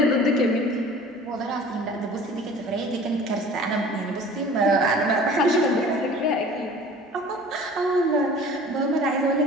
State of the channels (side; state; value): both; normal; correlation 0.45